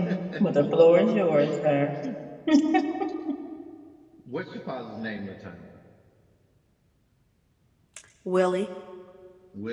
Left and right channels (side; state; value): both; identical; correlation 1.00